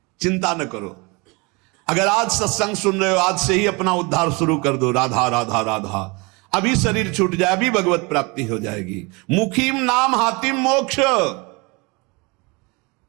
चिंता न करो। अगर आज सत्संग सुन रहे हो, आज से ही अपना उद्धार शुरू कर दो। राधा राधा राधा, अभी शरीर छूट जाए, अभी भगवत प्राप्ति हो जाएगी। मुखीम नाम हातिम मोक्ष।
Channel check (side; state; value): left; quieter; 27.7 dB